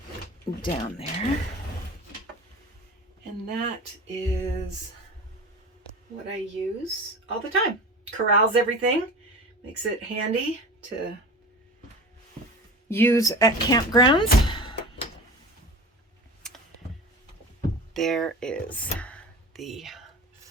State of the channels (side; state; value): both; normal; correlation 0.34